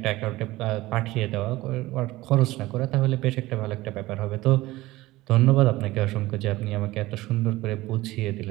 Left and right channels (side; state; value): left; quieter; 18.4 dB